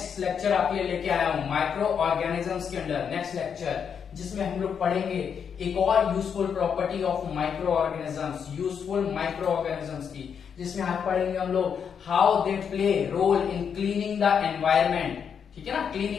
लेक्चर आपके लिए लेके आया हूँ माइक्रो ऑर्गेनिजम्स के अंडर नेक्स्ट लेक्चर, जिसमें हम लोग पढ़ेंगे एक और useful property of micro organisms, useful micro organisms की, जिसमें आज पढ़ेंगे हम लोग how they play role in cleaning the environment. ठीक है ना,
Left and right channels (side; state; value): right; quieter; 7.2 dB